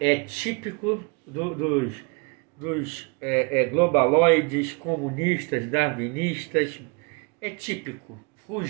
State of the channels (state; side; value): quieter; left; 31.4 dB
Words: é típico dos globaloides, comunistas, darwinistas, é típico.